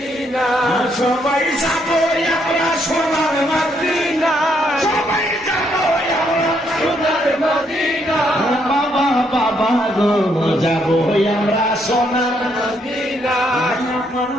সবাই যাবো আমরা সোনার মদিনা, সবাই যাবো আমরা সোনার মদিনা। বাবা বাবা গো যাবো আমরা সোনার মদিনা, আমার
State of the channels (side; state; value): both; normal; correlation 0.73